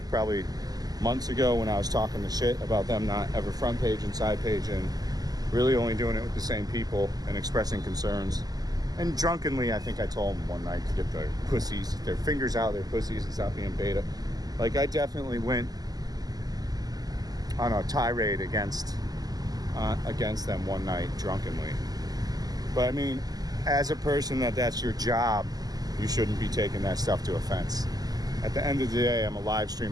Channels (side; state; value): left; late; 0.18 ms